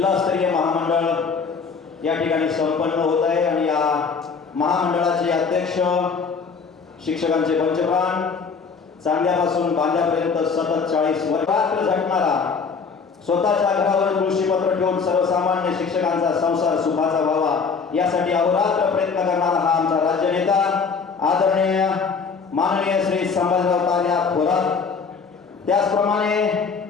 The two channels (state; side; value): quieter; right; 5.3 dB